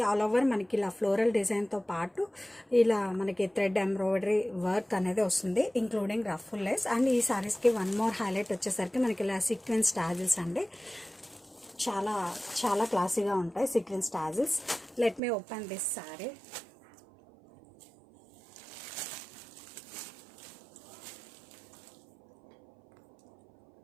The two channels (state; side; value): drops out; left; at 15.2 s